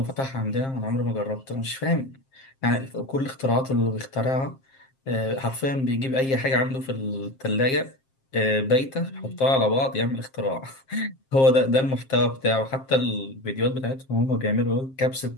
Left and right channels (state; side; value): late; right; 7.5 ms